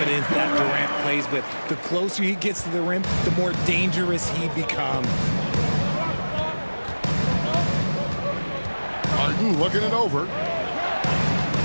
that Durant plays with. The closer he gets to the rim, the more dangerous he becomes. Harden looking it over.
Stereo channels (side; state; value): both; inverted; correlation -1.00